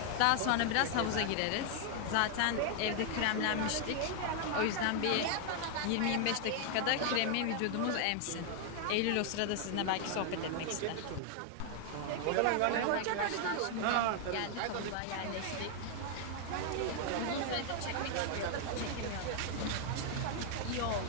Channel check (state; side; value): different; both; correlation 0.00